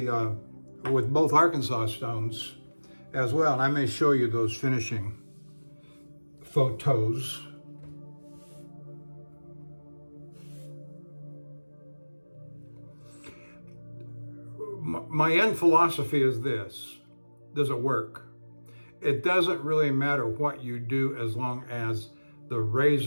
both Arkansas stones as well. And I may show you those finishing photos. My end philosophy is this: does it work? It doesn't really matter what you do as long as the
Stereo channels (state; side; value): inverted; both; correlation -1.00